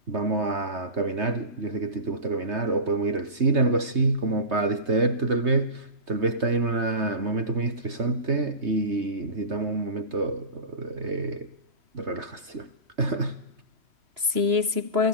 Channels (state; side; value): late; left; 3.0 ms